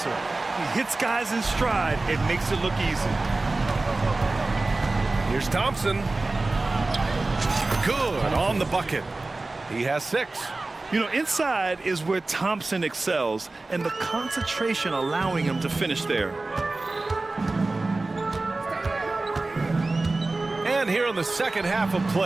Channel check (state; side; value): quieter; left; 3.2 dB